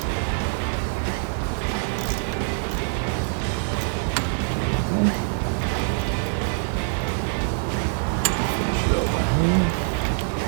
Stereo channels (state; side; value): silent; left; 59 dB below the other